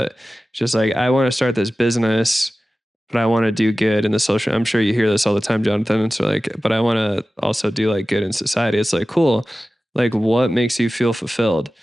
it's just like, I want to start this business, but I want to do good in the social. I'm sure you hear this all the time, Jonathan. It's like, but I want to also do like good in society. It's like, cool. Like, what makes you feel fulfilled?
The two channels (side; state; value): both; normal; correlation 0.96